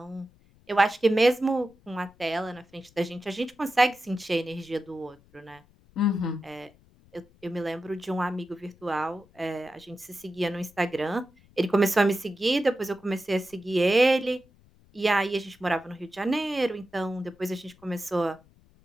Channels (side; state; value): left; noise; rumble, 29 dB below the sound